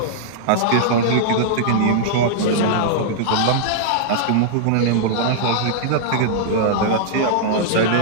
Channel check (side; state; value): both; different; correlation -0.02